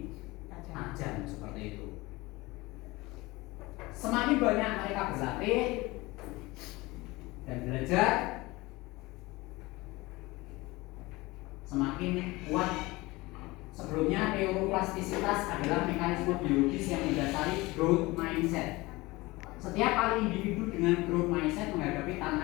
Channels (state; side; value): quieter; right; 21.6 dB